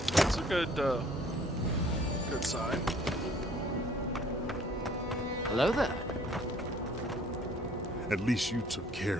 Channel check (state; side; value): normal; both; correlation 0.56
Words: That's a good sign. Hello there. At least you took care